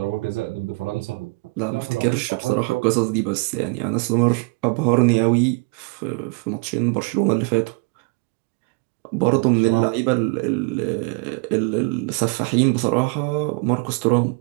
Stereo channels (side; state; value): left; quieter; 29.4 dB